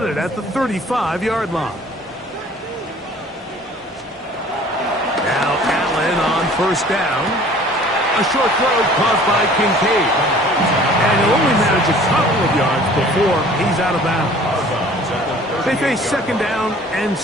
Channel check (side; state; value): both; normal; correlation 0.50